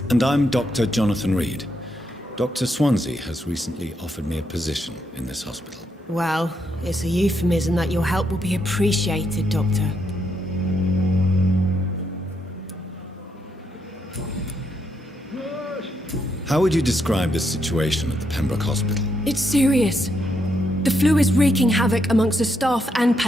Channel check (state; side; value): normal; both; correlation 0.79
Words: And I'm Dr. Jonathan Reid. Dr. Swansea has recently offered me a position in this hospital. Well, it's a euphemism that your help will be appreciated, Doctor. How would you describe the situation at the Pembroke Hospital? It's serious. The flu is wreaking havoc amongst the staff and